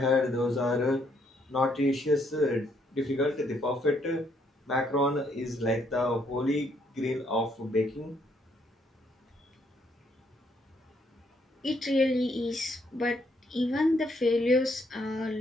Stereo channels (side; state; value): both; normal; correlation 0.71